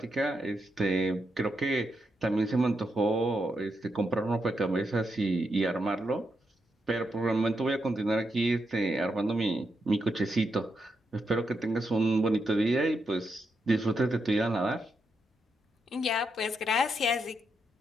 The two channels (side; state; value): both; normal; correlation 0.83